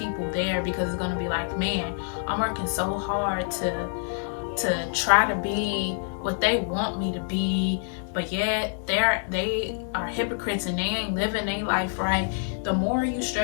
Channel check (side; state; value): right; silent; digital silence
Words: there, because it's going to be like, man, I'm working so hard to try to be what they want me to be, but yet they are hypocrites and they ain't living their life right. The more you